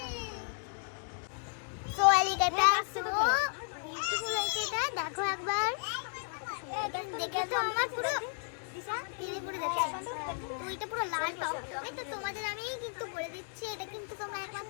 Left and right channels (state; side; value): silent; right; 55 dB below the other